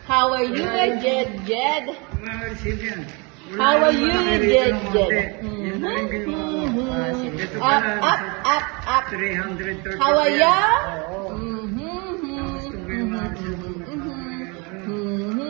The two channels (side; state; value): left; quieter; 30.2 dB